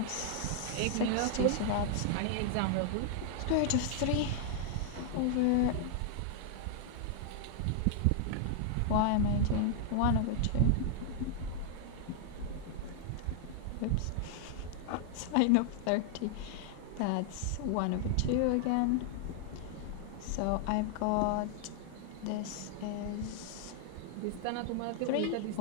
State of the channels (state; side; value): different; both; correlation 0.00